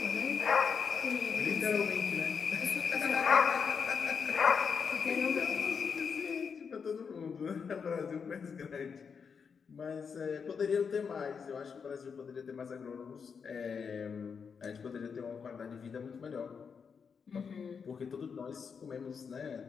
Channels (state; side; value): quieter; right; 6.1 dB